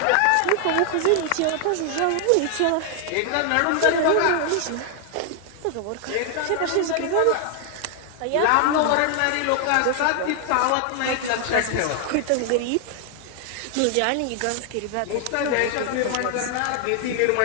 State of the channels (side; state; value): both; different; correlation 0.00